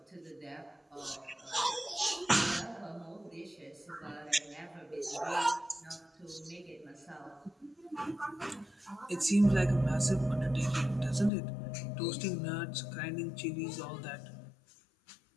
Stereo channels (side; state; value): right; drops out; at 11.3 s